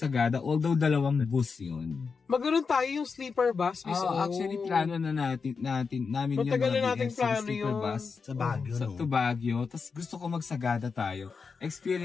although 2 bus yun. Maganoon tayo yung sleeper bus. Actually, plano na namin yun. Matagal na natin plano sleeper yun. Bus. Sa Baguio, To Baguio. Tapos gusto ko mag-Sagada tayo.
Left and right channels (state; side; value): quieter; right; 5.2 dB